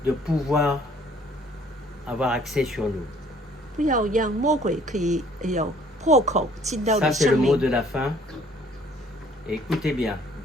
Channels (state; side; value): normal; both; correlation 0.58